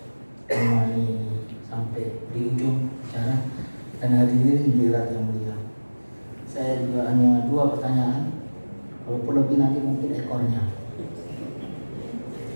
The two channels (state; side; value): inverted; both; correlation -1.00